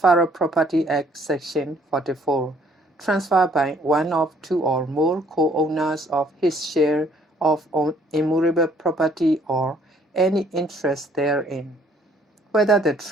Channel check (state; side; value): normal; both; correlation 0.62